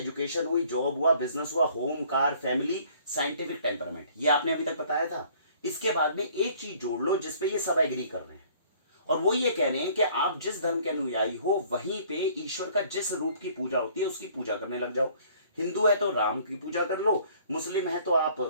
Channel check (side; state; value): both; inverted; correlation -0.56